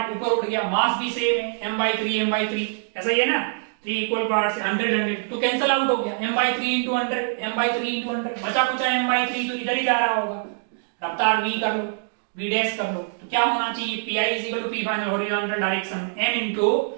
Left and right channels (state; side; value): silent; left; digital silence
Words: ऊपर उड़ गया, मास भी सेम है m/3 ऐसा ही है ना, 3 इक्वल पार्ट से 100 तो कैंसिल आउट हो गया, m/3 इंटू 100 बचा कुचा m/3 तो इधर ही जा रहा होगा। रफ्तार v कर लो, v डैश कर लो, तो क्या होना चाहिए pi is equal to p final horizontal direction m into